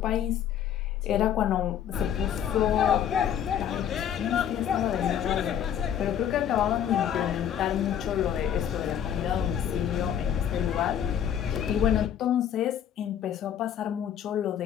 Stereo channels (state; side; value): quieter; right; 9.4 dB